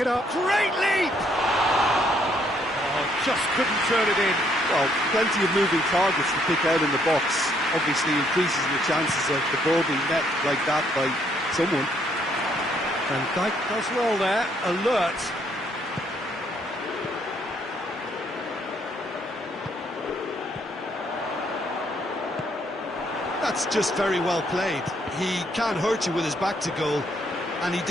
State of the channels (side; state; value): both; normal; correlation 0.69